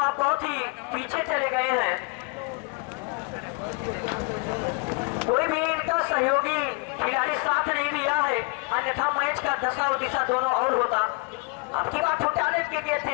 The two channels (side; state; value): right; quieter; 30.7 dB